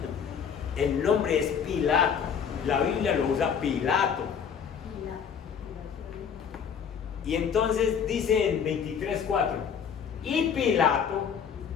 El nombre es Pilato, la Biblia lo usa Pilato. Y entonces dice en 23:4, y Pilato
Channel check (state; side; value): quieter; right; 7.3 dB